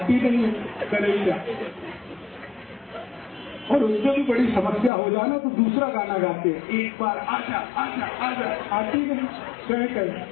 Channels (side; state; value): right; drops out; at 4.9 s